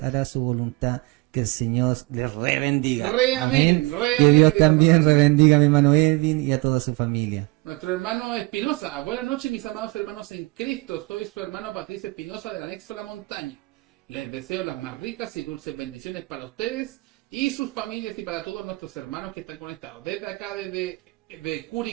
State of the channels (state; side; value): quieter; left; 23.9 dB